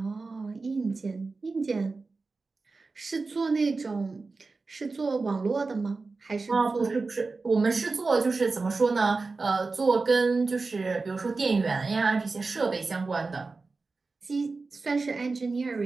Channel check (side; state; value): left; quieter; 3.9 dB